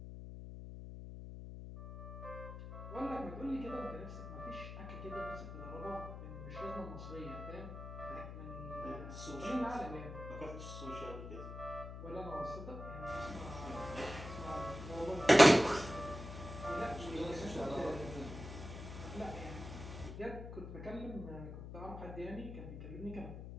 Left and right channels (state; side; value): noise; left; hum, 9 dB below the sound